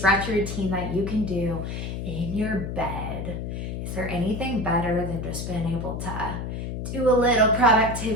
routine that you can do in your bed. Is there anything better than just being able to do a little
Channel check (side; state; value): left; noise; hum, 5 dB below the sound